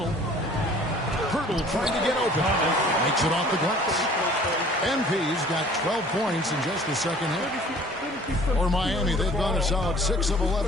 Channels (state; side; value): normal; both; correlation 0.51